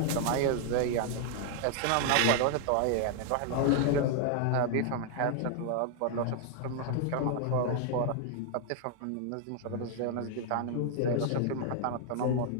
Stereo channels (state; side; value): different; both; correlation 0.00